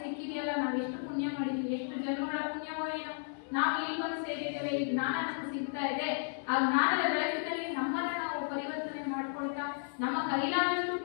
ಸಿಕ್ಕಿದೆಯಲ್ಲ, ನಾವು ಎಷ್ಟು ಪುಣ್ಯ ಮಾಡಿದೀವಿ, ಎಷ್ಟು ಜನ್ಮಗಳ ಪುಣ್ಯವೋ ಏನೋ ನಾವು ಇಲ್ಲಿ ಬಂದು ಸೇರಿದ್ದೇವೆ, ಈ ಜ್ಞಾನ ನಮಗೆ ಸಿಗ್ತಾ ಇದೆ. ಆ ಜ್ಞಾನದ ಬೆಳಕಿನಲ್ಲಿ ನಮ್ಮನ್ನ ನಾವು ಪರಿವರ್ತನೆ ಮಾಡ್ಕೊಳ್ತಾ, ನಮ್ಮ ಕೈಲಾದಷ್ಟು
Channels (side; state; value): right; silent; 55 dB below the other